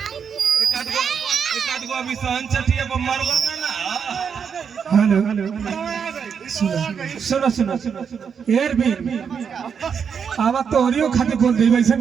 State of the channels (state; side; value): quieter; left; 6.8 dB